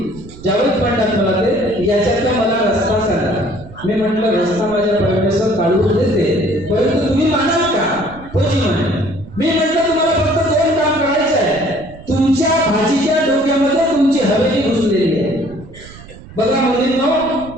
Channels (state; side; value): noise; right; rumble, 18 dB below the sound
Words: ज्यावेळेस म्हणतात मला ते याच्यातला मला रस्ता सांगा। मी म्हटलं रस्ता माझ्या परमेश्वर काढून देते, परंतु तुम्ही मानाल का? होजी म्हणे। मी म्हटलं तुम्हाला फक्त 2 काम करायचं आहे। तुमच्या भाजीच्या डोक्यामध्ये तुमची हवेली घुसलेली आहे। बघा मुलींनो